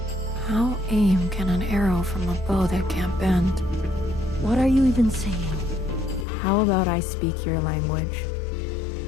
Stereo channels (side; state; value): right; drops out; at 6.2 s